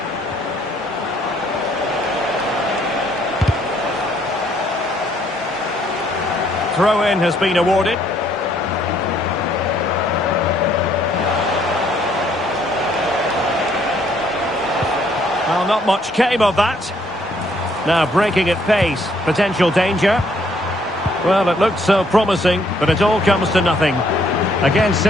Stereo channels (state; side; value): normal; both; correlation 0.67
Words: Throw-in has been awarded. Well, not much came of that. Now breaking at pace. Potential danger. Well, it looked so promising, but it all comes to nothing. Again,